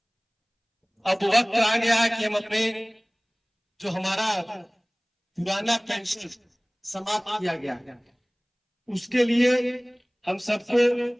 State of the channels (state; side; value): identical; both; correlation 1.00